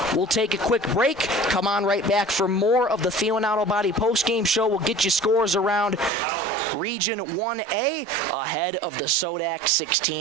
We'll take a quick break, come on right back for more of the Thielen Auto Body post-game show. We'll get you scores around Region 1A ahead of the Sodak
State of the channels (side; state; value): left; drops out; at 6.1 s